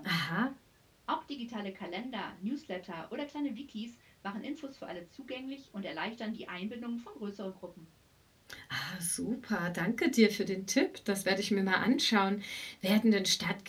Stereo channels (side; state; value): both; identical; correlation 1.00